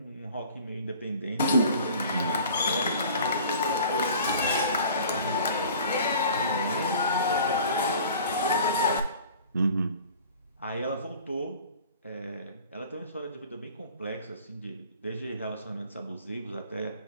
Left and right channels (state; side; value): inverted; both; correlation -0.46